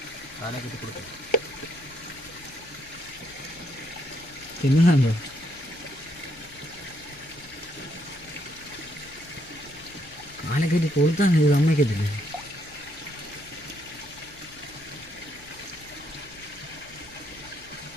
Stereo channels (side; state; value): left; noise; hum, 22 dB below the sound